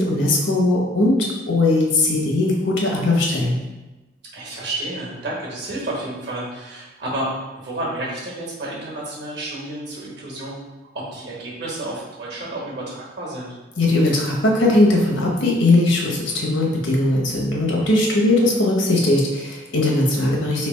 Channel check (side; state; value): both; normal; correlation 0.60